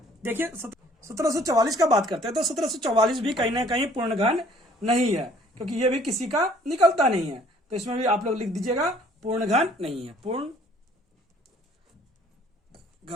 देखिए 1744 का बात करते हैं तो 1744 भी कहीं ना कहीं पूर्ण घन नहीं है, क्योंकि ये भी किसी का निकलता नहीं है, तो इसमें भी आप लोग लिख दीजिएगा पूर्ण घन नहीं है, पूर्ण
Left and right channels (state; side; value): normal; both; correlation 0.57